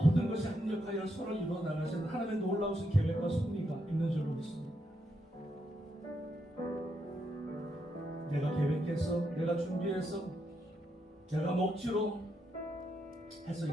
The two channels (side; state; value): both; normal; correlation 0.80